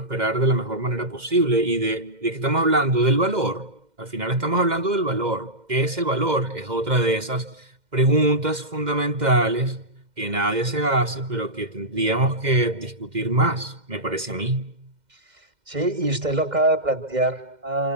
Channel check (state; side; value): late; left; 2.1 ms